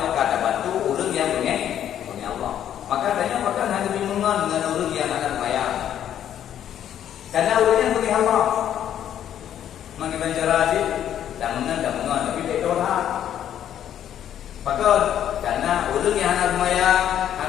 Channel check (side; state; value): right; quieter; 10.4 dB